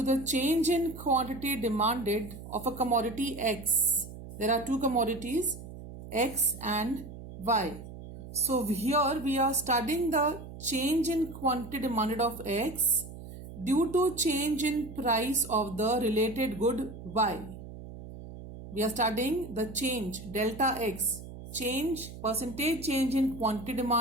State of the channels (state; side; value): noise; right; hum, 13 dB below the sound